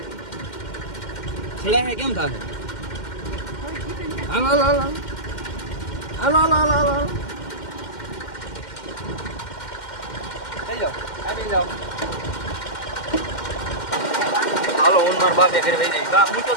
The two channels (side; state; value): right; late; 2.1 ms